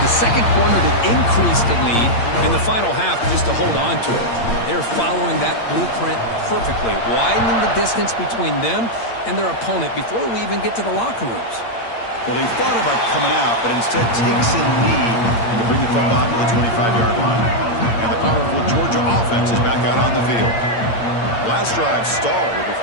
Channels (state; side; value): late; right; 8.7 ms